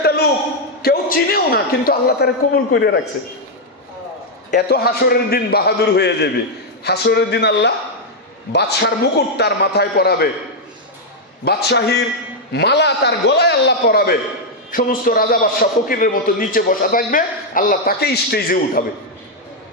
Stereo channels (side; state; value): both; normal; correlation -0.01